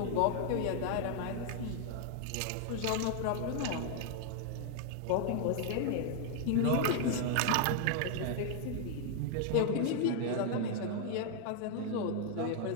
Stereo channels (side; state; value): both; different; correlation 0.00